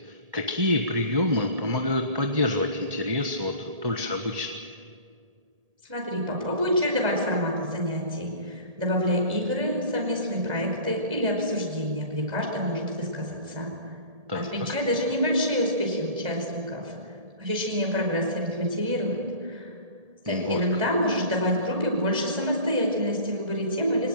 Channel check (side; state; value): left; late; 1.7 ms